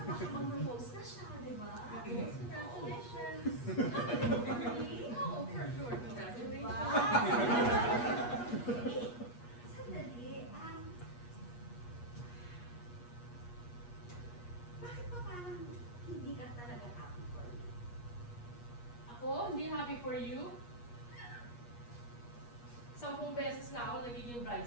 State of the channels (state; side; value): late; right; 8.4 ms